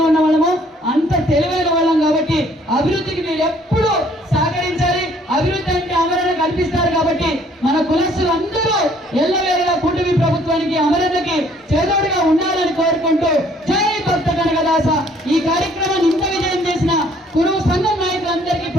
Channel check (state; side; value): normal; both; correlation 0.61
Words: ఉన్న వాళ్ళమో అంత తెలివైన వాళ్ళం కాబట్టి అభివృద్ధికి మీరు ఎప్పుడు సహకరించాలి. అభివృద్ధి అంటే అమరణ కల్పిస్తారు కాబట్టి మన కులస్తులు అందరూ ఎల్లవేళలా కూటమి ప్రభుత్వానికి, అమరణకి చేదోడుగా ఉండాలని కోరుకుంటూ జై భక్త కనకదాస. ఈ కార్యక్రమాన్ని ఇంత విజయం చేసిన కురువు సంఘం నాయకులందరికీ